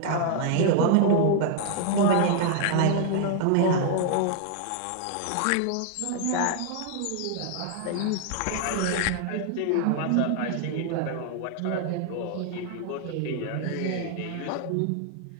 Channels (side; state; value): both; different; correlation 0.00